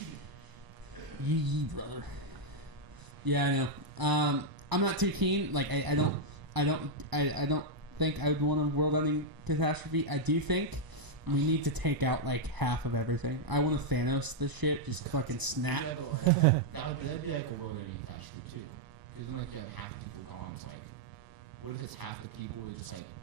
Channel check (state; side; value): late; left; 1.0 ms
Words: Yee, brother. Yeah, I know. I'm not too keen. Like I don't think I would want a world-ending catastrophe. I do think we need to take out like half of everything. I want to Thanos this shit, just fucking snap. Yeah, but like, that'd be like a world-ending catastrophe too. Because then like you have half the people gone. It's like, what if it's half the people with just like